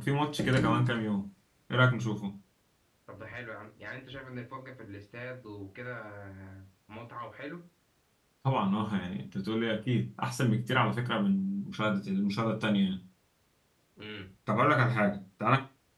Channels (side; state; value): both; identical; correlation 1.00